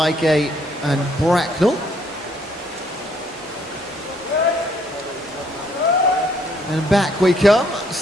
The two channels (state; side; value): normal; both; correlation 0.67